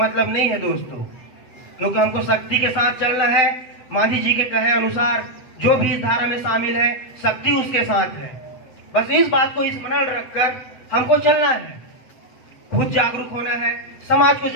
नहीं है दोस्तों, क्योंकि हमको शक्ति के साथ चलना है। मांझी जी के कहे अनुसार जो भी इस धारा में शामिल है, शक्ति उसके साथ है। बस इस बात को स्मरण रखकर हमको चलना है, खुद जागरूक होना है, समाज को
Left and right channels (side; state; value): right; late; 8.0 ms